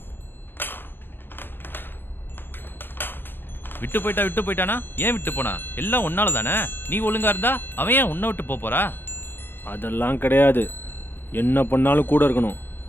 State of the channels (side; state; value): right; late; 0.10 ms